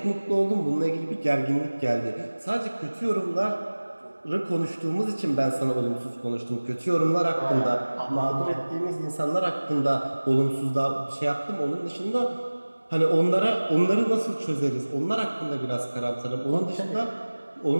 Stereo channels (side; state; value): both; inverted; correlation -1.00